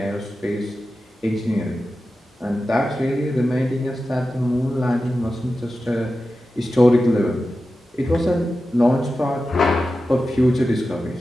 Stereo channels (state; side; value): normal; both; correlation 0.93